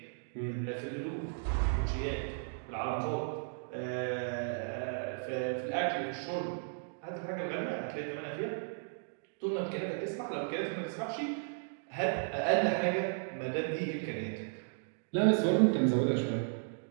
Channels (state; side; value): silent; left; digital silence